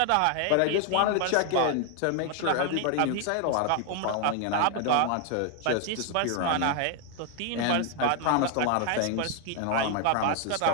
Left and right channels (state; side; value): different; both; correlation 0.00